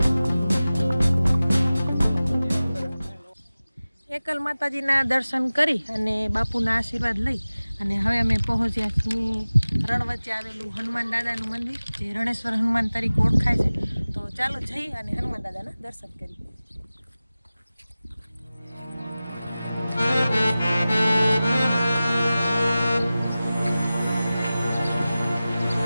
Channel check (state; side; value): inverted; both; correlation -0.97